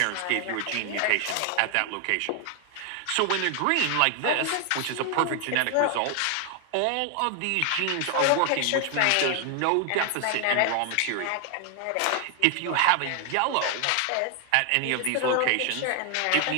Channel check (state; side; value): different; both; correlation 0.00